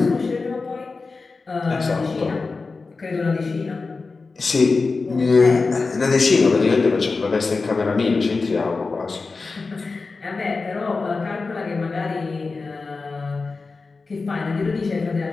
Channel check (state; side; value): quieter; right; 4.1 dB